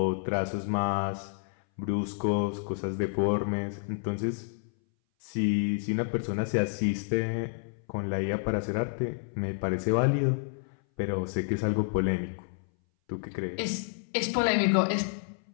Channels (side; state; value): right; silent; 58 dB below the other